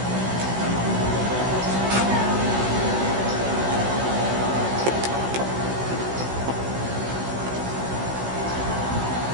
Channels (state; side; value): late; left; 16 ms